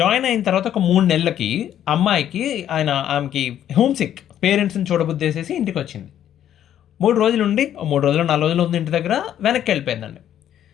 అయిన తర్వాత ఒక 3 నెలలకి అమ్మాయికి ఆమెకి హోమ్ సిక్, పేరెంట్స్ని చూడబుద్దేసేసి ఇంటికి వచ్చింది. 3 రోజులు ఉండి, 3 రోజులు 4 రోజులు ఉంది ఇంటి దగ్గర, వెనక్కి వెళ్ళిపోయిందండి.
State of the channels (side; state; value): right; quieter; 10.7 dB